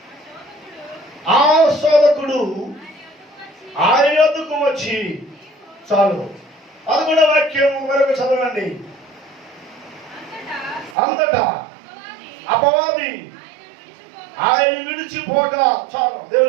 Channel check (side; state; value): left; drops out; at 11.0 s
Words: ఆ శోధకుడు ఆయన యొద్దకు వచ్చి, చాలు. 11వ వాక్యం మరొక చదవండి. అంతటా అపవాది ఆయన విడిచిపోగా, చాలు.